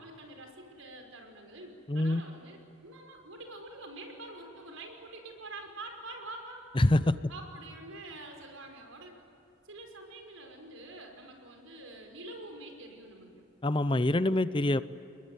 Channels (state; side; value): normal; both; correlation 0.81